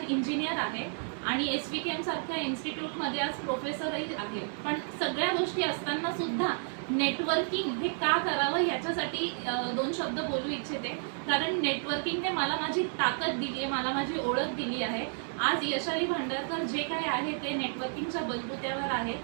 इंजिनियर आहे आणि SVKM सारख्या इन्स्टिट्यूटमध्ये आज प्रोफेसरही आहे. पण सगळ्या गोष्टी असताना सुद्धा नेटवर्किंग हे का करावं ह्याच्यासाठी दोन शब्द बोलू इच्छिते. कारण नेटवर्किंगने मला माझी ताकद दिली आहे, मला माझी ओळख दिली आहे. आज यशाली भांडारकर जे काय आहे ते नेटवर्किंगच्या बलबुत्यावर आहे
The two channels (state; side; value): silent; left; 57 dB below the other